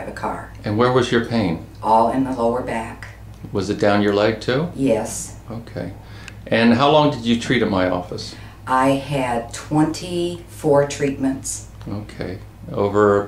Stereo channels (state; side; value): identical; both; correlation 1.00